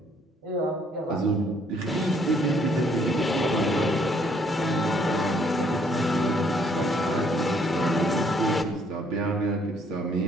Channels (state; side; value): normal; both; correlation 0.66